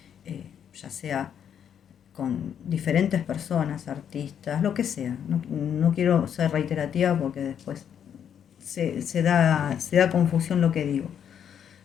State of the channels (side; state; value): right; quieter; 8.6 dB